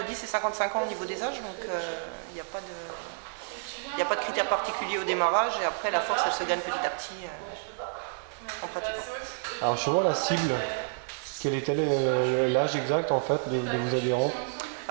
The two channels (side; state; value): left; silent; 58 dB below the other